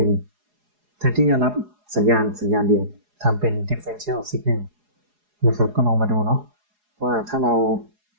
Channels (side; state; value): left; late; 4.8 ms